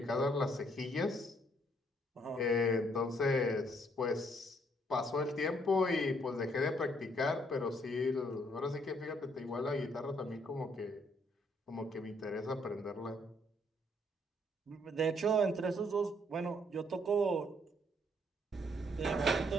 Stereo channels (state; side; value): normal; both; correlation 0.68